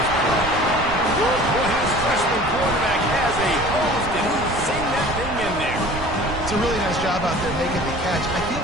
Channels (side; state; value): right; noise; rumble, 9 dB below the sound